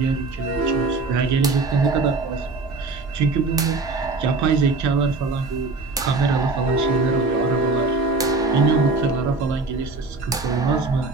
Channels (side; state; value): left; quieter; 3.7 dB